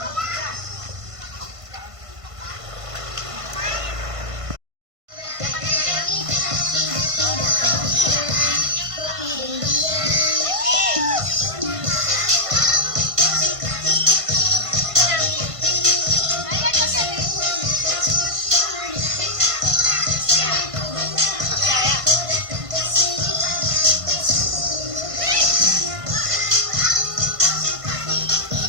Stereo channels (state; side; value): late; left; 1.5 ms